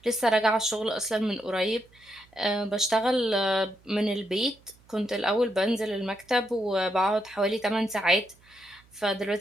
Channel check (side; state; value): right; noise; hum, 29 dB below the sound